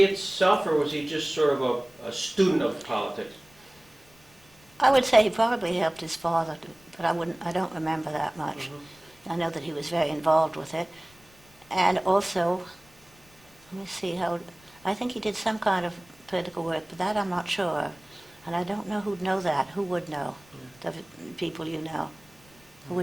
or was he just sort of a student of politics? I would say he probably helped his father, but I don't remember that much. I know that he was very involved with it. And also, let me see I think he did some kind of political work, but that I'm not sure of. And I don't know who'd know that. Who would know? The people you know. Who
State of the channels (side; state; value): left; noise; rumble, 28 dB below the sound